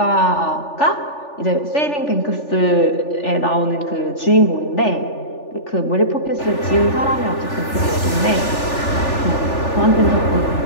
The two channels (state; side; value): late; right; 3.4 ms